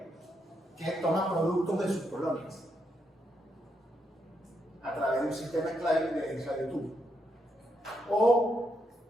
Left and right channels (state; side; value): normal; both; correlation 0.79